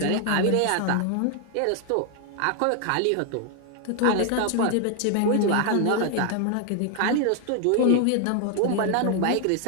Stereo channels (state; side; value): different; both; correlation 0.00